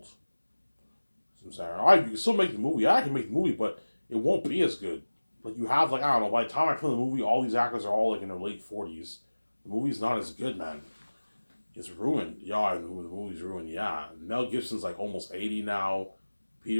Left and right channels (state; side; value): inverted; both; correlation -1.00